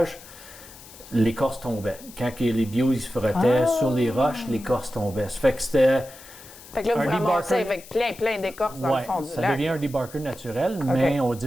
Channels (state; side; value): noise; left; hiss, 19 dB below the sound